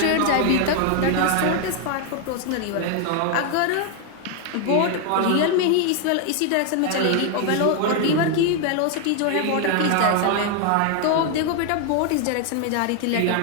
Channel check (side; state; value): both; different; correlation 0.00